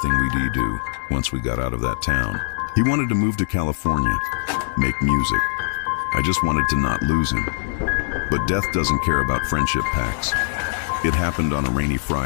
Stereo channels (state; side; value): silent; right; 64 dB below the other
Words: we'd do once we got out of that town. He wanted to move to California, make music. I just wanted to not lose him. But death doesn't care about friendship pacts. It happened on a rainy